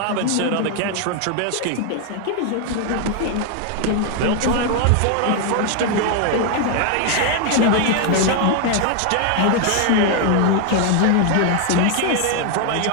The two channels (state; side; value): different; both; correlation 0.00